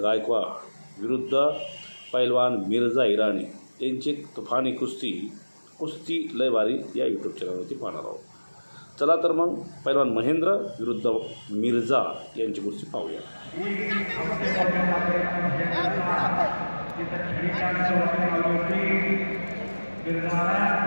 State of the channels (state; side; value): inverted; both; correlation -1.00